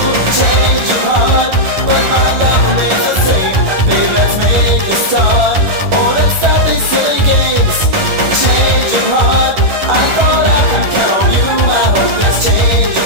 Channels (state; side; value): late; left; 11 ms